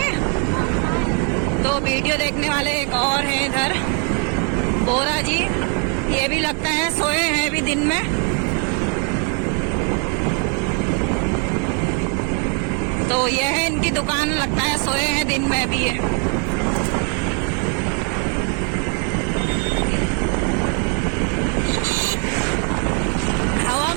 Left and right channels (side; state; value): left; quieter; 37.4 dB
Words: तो वीडियो देखने वाले एक और हैं इधर, बोरा जी। ये भी लगता है सोए हैं अभी दिन में। तो ये है इनकी दुकान, लगता है सोए हैं दिन में भी ये। हवा